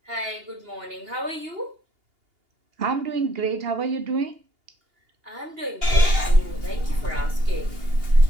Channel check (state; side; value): late; left; 2.8 ms